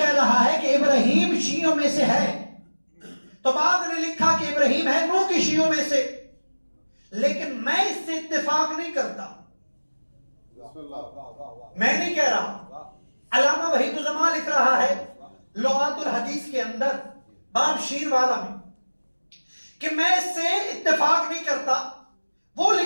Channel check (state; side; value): inverted; both; correlation -1.00